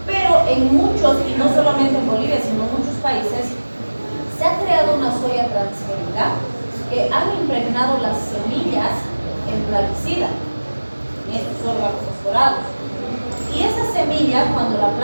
pero en muchos, y no solamente en Bolivia, sino en muchos países, se ha creado una soya transgénica que han impregnado las semillas en plaguicida, en estos órganos fosforados. Y esa semilla, cuando la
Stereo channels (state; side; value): inverted; both; correlation -1.00